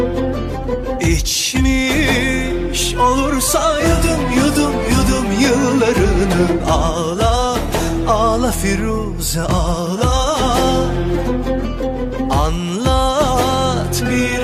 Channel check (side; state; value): both; identical; correlation 1.00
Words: İçmiş olursa yudum yudum yudum yıllarını. Ağla ağla Firuze ağla, anlat